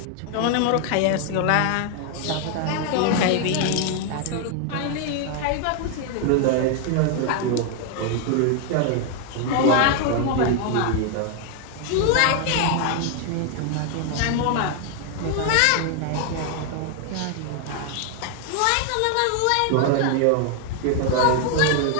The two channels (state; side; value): different; both; correlation 0.00